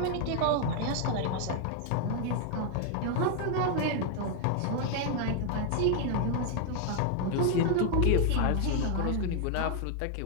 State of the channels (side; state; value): both; different; correlation 0.00